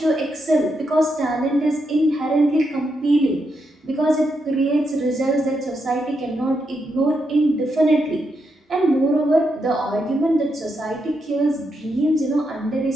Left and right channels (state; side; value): normal; both; correlation 0.82